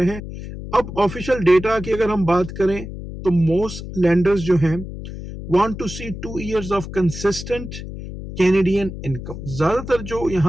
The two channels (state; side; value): noise; left; hum, 10 dB below the sound